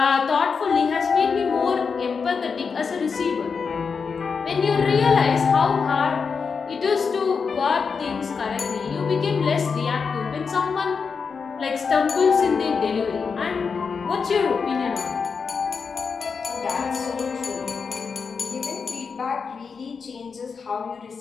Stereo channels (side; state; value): right; quieter; 5.5 dB